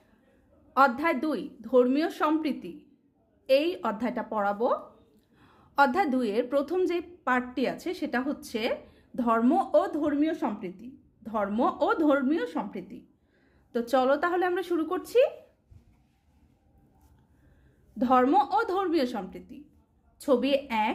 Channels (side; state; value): both; identical; correlation 1.00